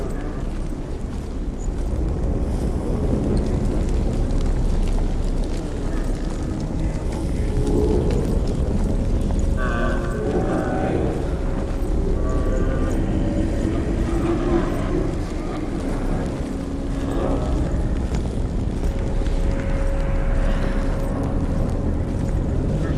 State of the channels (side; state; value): both; identical; correlation 1.00